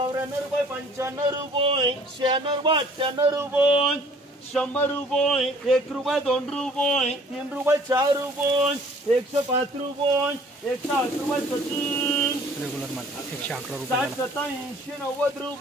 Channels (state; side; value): normal; both; correlation 0.55